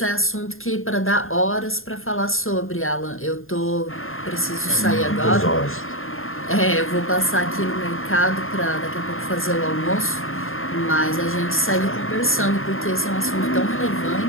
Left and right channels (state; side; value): late; right; 0.61 ms